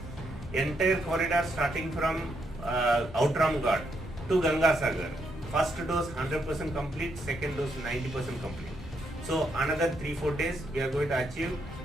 Entire corridor starting from Outram Ghat to Ganga Sagar. First dose 100% complete, second dose 90% complete. So another 3-4 days we are going to achieve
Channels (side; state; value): both; normal; correlation 0.77